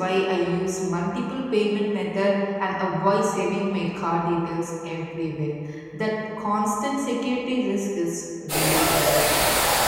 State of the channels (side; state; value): both; identical; correlation 1.00